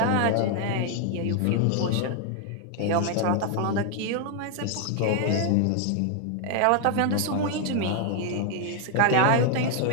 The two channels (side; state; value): both; different; correlation 0.00